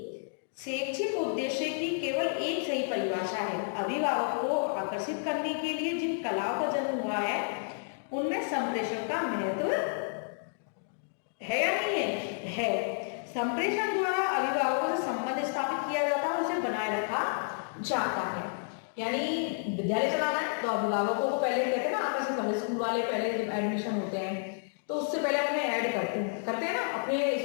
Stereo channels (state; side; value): silent; right; digital silence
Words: शैक्षिक उद्देश्य की केवल एक सही परिभाषा है। अभिभावक को आकर्षित करने के लिए जिन कलाओं का जन्म हुआ है उनमें संप्रेषण का महत्व है या नहीं है? है। संप्रेषण द्वारा अभिभावकों से संबंध स्थापित किया जाता है, उसे बनाए रखा जाता है। यानी विद्यालय चलाना है तो अभिभावकों को पहले कहते हैं ना आकर्षित करना। स्कूल वाले पहले जब एडमिशन होते हैं तो उससे पहले अपने ऐड करते हैं ना, अपने